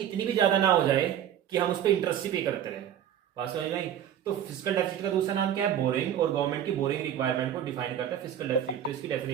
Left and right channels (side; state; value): left; quieter; 10.0 dB